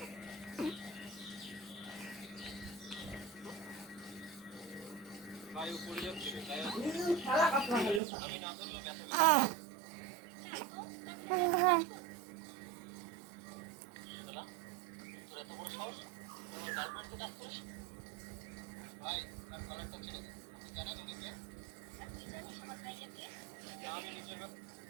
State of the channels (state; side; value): drops out; left; at 8.0 s